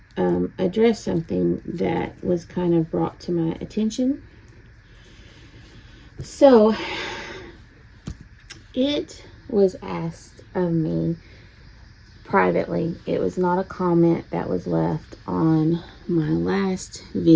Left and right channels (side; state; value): both; identical; correlation 1.00